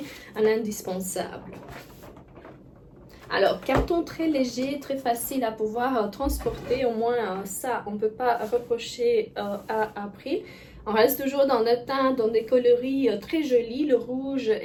un indispensable. Alors, carton très léger, très facile à pouvoir transporter, au moins ça, on ne peut pas reprocher à April. On reste toujours dans le teint, dans des coloris très jolis. Le rouge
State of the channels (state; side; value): identical; both; correlation 1.00